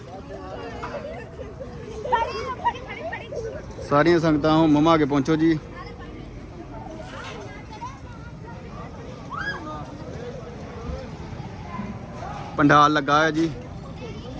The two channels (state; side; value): identical; both; correlation 1.00